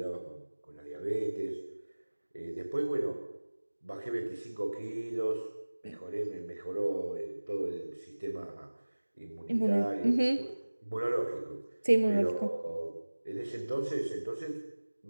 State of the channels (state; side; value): inverted; both; correlation -1.00